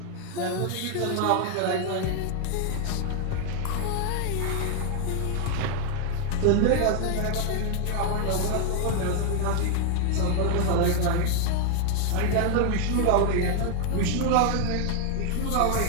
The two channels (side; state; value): both; different; correlation 0.00